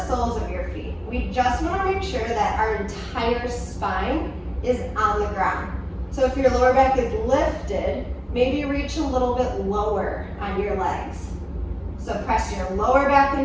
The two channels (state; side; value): identical; both; correlation 1.00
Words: soles of your feet. We just want to make sure that our entire spine is on the ground. So if your lower back is lifted, maybe reach a little bit lower on your legs. So press your lower back